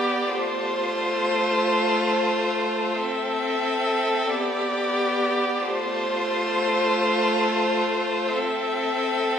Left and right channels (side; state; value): both; normal; correlation 0.72